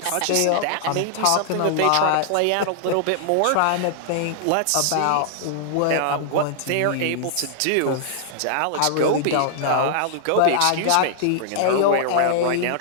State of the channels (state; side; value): different; both; correlation -0.01